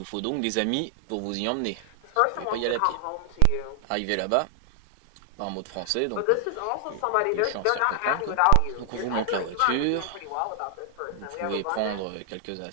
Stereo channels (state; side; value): different; both; correlation 0.00